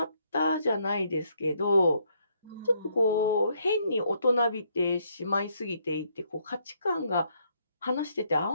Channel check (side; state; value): both; inverted; correlation -0.72